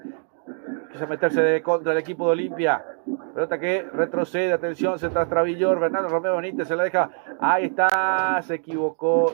quiso meterse contra el equipo de Olimpia, pelota que retrocede, atención, se Travillor, Bernardo Romeo Benítez se la deja, ahí está, se equivocó,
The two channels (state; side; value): silent; left; 56 dB below the other